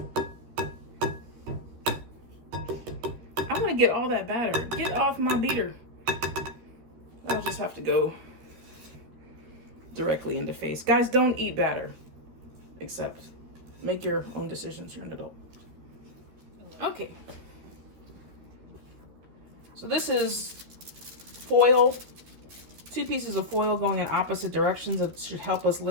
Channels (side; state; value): left; late; 13 ms